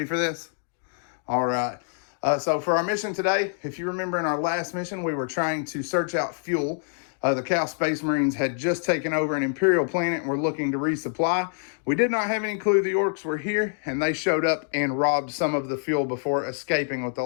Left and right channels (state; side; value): silent; right; digital silence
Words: for this? All right. So for our mission today, if you remember in our last mission, we were trying to search out fuel. The Chaos Space Marines had just taken over an Imperial planet and were looking to resupply. We did not have any clue the Orcs were here, and they showed up and robbed some of the fuel before escaping with the